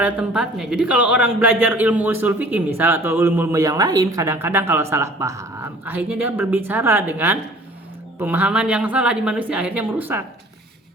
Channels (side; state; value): both; normal; correlation 0.50